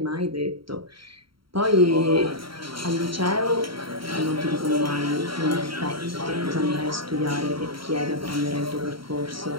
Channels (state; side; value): late; left; 0.74 ms